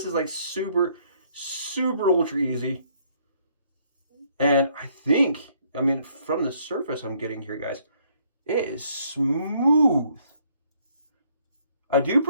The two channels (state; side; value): inverted; both; correlation -0.66